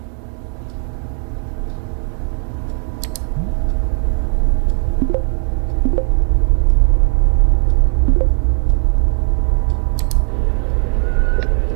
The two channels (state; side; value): quieter; left; 39.6 dB